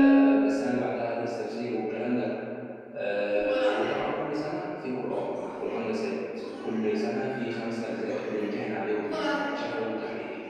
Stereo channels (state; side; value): identical; both; correlation 1.00